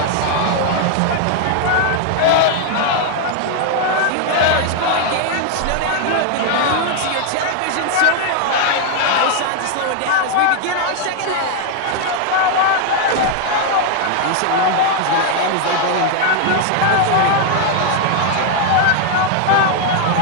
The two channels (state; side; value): different; both; correlation 0.00